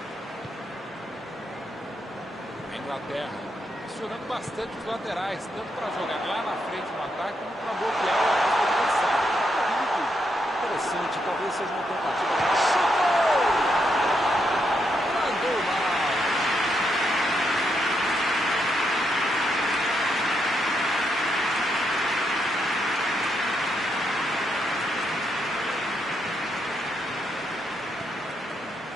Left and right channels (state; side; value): normal; both; correlation 0.80